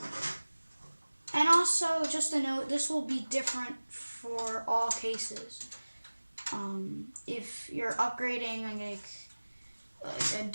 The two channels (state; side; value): inverted; both; correlation -1.00